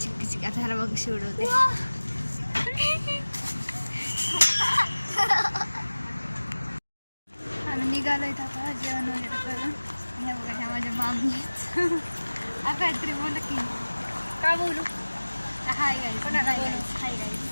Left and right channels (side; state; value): both; inverted; correlation -1.00